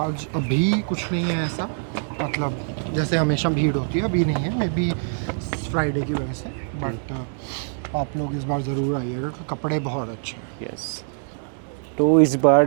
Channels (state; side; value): silent; left; digital silence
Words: अभी कुछ नहीं है ऐसा, मतलब जैसे हमेशा भीड़ होती है, अभी नहीं है, मे बी फ्राइडे की वजह से। बट आप लोग इस बार ज़रूर आइएगा, कपड़े बहुत अच्छे हैं। यस। तो इस